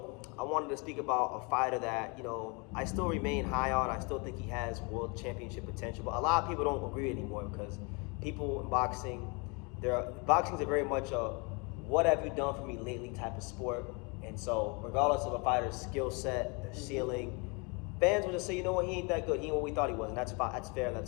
I wanted to speak about a fighter that, I still remain high on. I still think he has world championship potential, but a lot of people don't agree anymore because people in boxing, boxing's a very much a what have you done for me lately type of sport. And so regardless of a fighter's skill set, their ceiling, fans will just say, you know what, he ain't that good. He ain't what we thought he was, and that's fine. That's fair, and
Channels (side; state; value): right; quieter; 31.0 dB